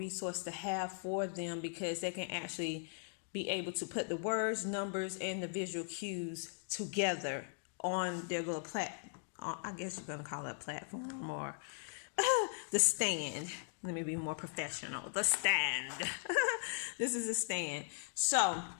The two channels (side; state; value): right; silent; digital silence